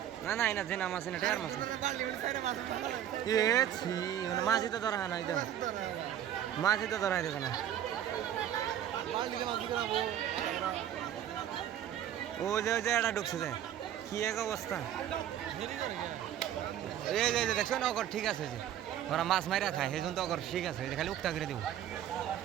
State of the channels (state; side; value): quieter; left; 10.8 dB